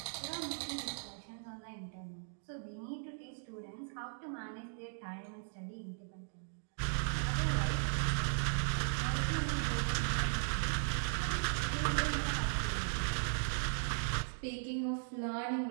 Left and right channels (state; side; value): silent; left; digital silence